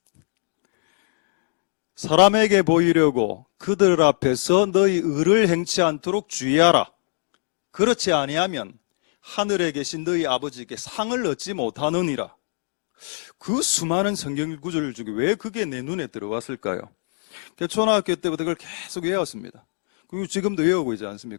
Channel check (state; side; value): silent; right; digital silence